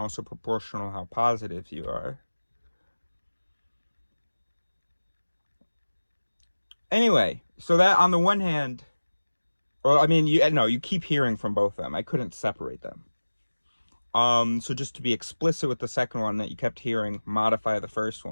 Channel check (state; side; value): inverted; both; correlation -1.00